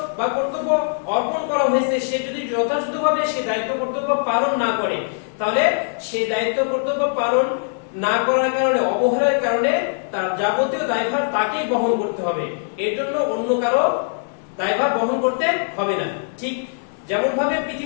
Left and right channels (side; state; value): right; silent; digital silence